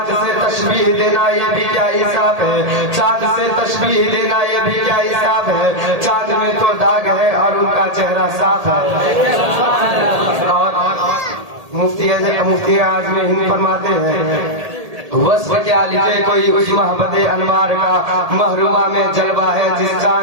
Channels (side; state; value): left; late; 1.8 ms